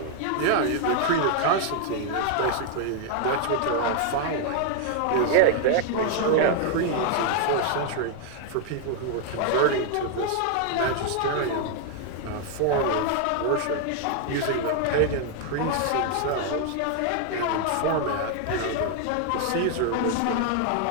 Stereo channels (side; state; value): both; different; correlation 0.00